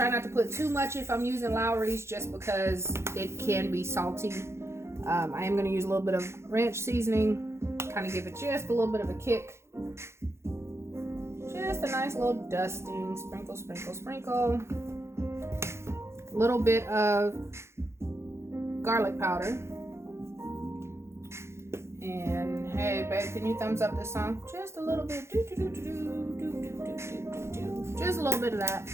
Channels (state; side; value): late; left; 0.13 ms